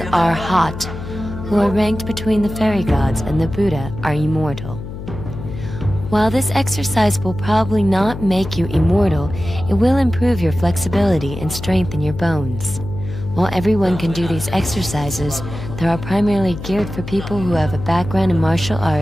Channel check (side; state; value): left; noise; hum, 10 dB below the sound